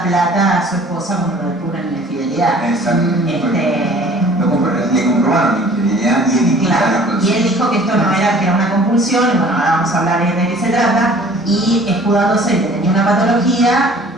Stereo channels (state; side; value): normal; both; correlation 0.50